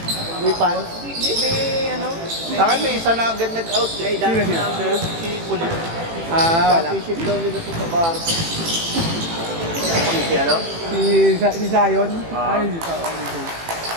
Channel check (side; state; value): left; late; 18 ms